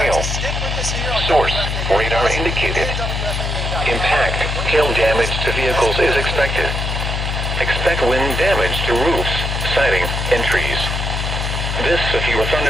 Source, radar indicated. Impact, hail damage to vehicles is expected. Expect wind damage to roofs, siding, and trees. This severe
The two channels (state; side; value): noise; left; hum, 2 dB below the sound